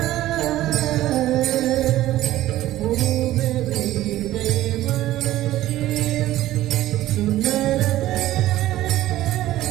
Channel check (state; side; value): quieter; left; 14.8 dB